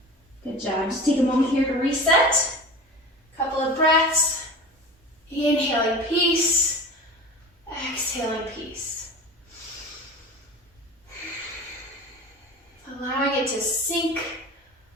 Good job. Just take a moment here to reset. Couple of breaths. Inhaling peace. Exhaling peace. Allowing it to sink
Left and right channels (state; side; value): normal; both; correlation 0.34